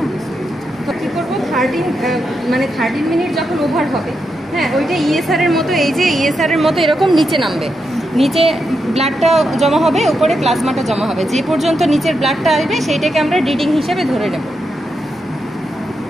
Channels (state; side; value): normal; both; correlation 0.85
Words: তো কি করবো, 13 মিনিট যখন ওভার হবে, হ্যাঁ, ওইটা ইএসআর এর মতো, এই যে ইএসআর এর মতো এরকম নিচে নামবে, নিচে ব্লাডটা জমা হবে, উপরে প্লাজমাটা জমা হবে। যে পর্যন্ত নিচের ব্লাডটা আসবে সেইটাকে আমরা রিডিং হিসেবে ধরে নেব।